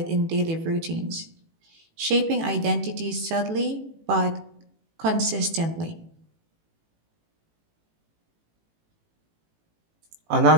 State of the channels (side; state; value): left; late; 18 ms